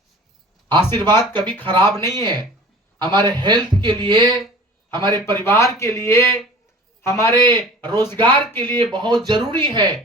आशीर्वाद कभी खराब नहीं है। हमारे हेल्थ के लिए, हमारे परिवार के लिए, हमारे रोजगार के लिए बहुत जरूरी है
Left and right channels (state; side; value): normal; both; correlation 0.42